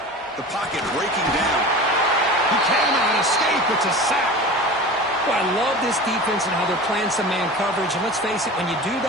The pocket breaking down. He cannot escape. It's a sack. Well, I love this defense and how they're playing some man coverage. And let's face it, when you do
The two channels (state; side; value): normal; both; correlation 0.34